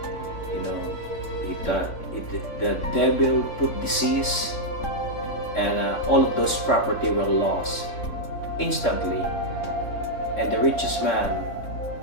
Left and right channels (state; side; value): late; right; 3.4 ms